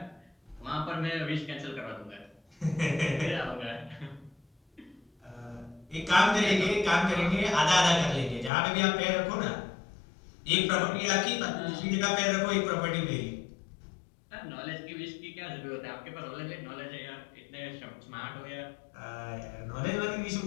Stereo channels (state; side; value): drops out; right; at 8.5 s